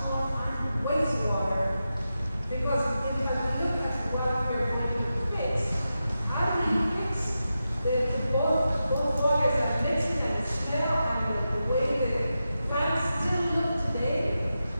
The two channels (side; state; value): both; inverted; correlation -0.90